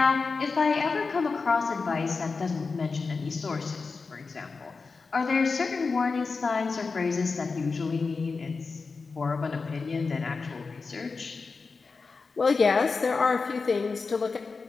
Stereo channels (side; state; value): right; quieter; 4.4 dB